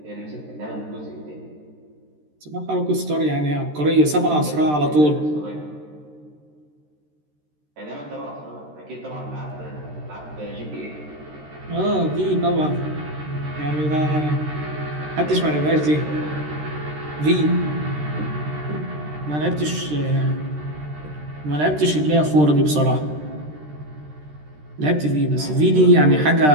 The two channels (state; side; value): late; left; 13 ms